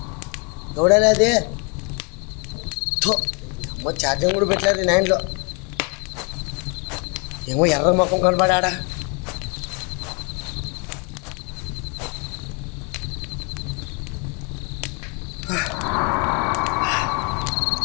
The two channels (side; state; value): right; quieter; 34.3 dB